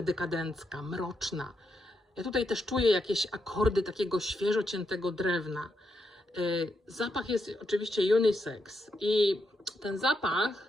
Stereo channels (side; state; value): both; normal; correlation 0.82